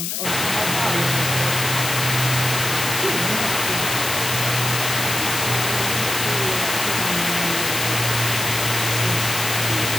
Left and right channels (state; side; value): noise; left; hiss, 2 dB below the sound